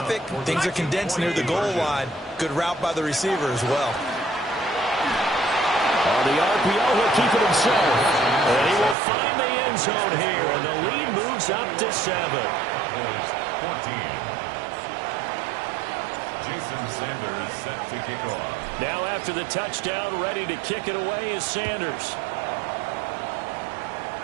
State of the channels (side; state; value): left; drops out; at 9.0 s